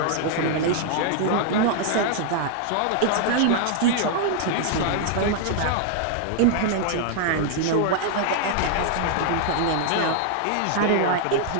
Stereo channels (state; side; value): different; both; correlation -0.01